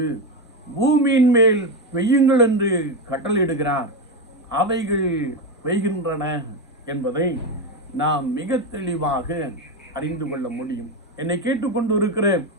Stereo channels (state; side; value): normal; both; correlation 0.12